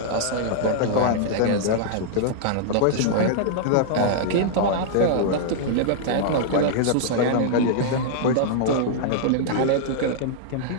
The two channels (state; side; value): different; both; correlation -0.01